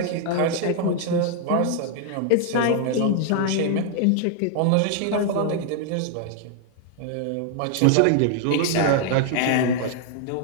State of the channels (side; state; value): both; different; correlation 0.00